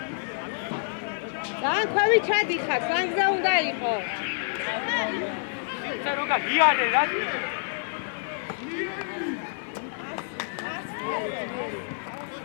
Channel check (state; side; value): silent; right; digital silence